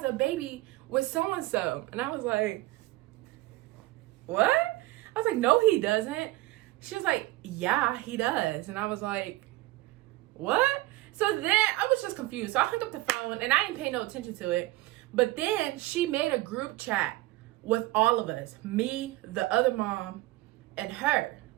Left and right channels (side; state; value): left; quieter; 18.7 dB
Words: a baby with so-and-so. And I was like, what? I was like, no, he doesn't. She was like, yeah, he does. And I was like, what? So then I was just confused. So I hung up the phone, and I didn't pay no attention to it. But then she made a group chat with all of us, me, the other mom, and her.